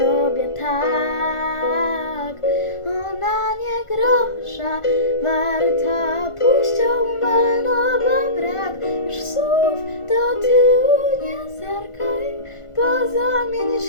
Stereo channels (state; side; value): late; right; 1.4 ms